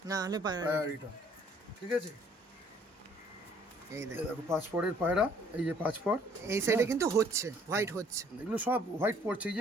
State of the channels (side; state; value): both; normal; correlation 0.60